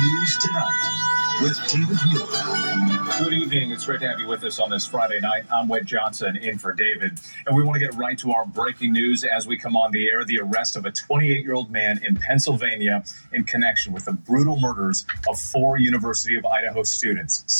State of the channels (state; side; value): inverted; both; correlation -1.00